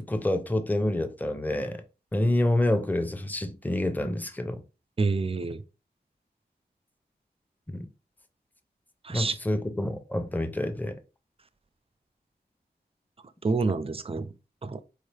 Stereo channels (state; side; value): normal; both; correlation 0.90